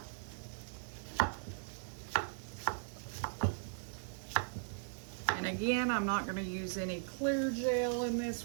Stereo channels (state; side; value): silent; left; 52 dB below the other